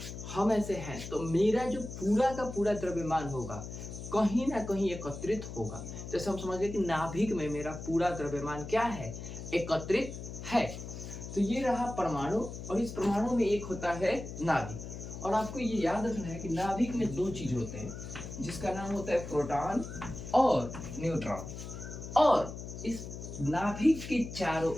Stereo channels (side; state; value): left; noise; hum, 9 dB below the sound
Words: हम ऐसे हैं तो मेरा जो पूरा का पूरा द्रव्यमान होगा कहीं ना कहीं एकत्रित होगा। जैसे हम समझ गए कि नाभिक में मेरा पूरा द्रव्यमान क्या है, एकत्रित है। तो ये रहा परमाणु और इस परमाणु में एक होता है नाभिक। और आपको ये याद रखना है कि नाभिक में दो चीज होते हैं जिसका नाम होता है प्रोटॉन और न्यूट्रॉन। और इस नाभिक के चारों